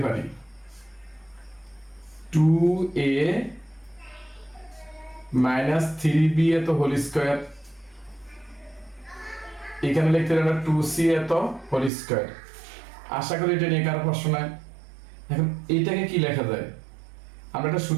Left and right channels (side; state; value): left; drops out; at 11.9 s